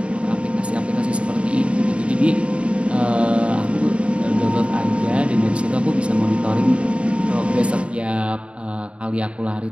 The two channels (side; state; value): left; late; 0.060 ms